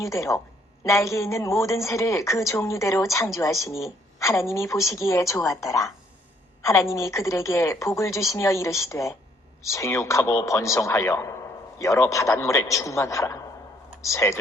날개 있는 모든 새를 그 종류대로 창조하시니 하나님이 보시기에 좋았더라. 하나님이 그들에게 복을 주시며 이르시되 생육하고 번성하여 여러 바닷물에 충만하라.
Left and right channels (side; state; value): both; normal; correlation 0.66